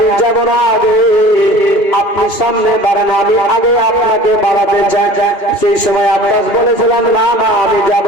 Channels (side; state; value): right; late; 2.4 ms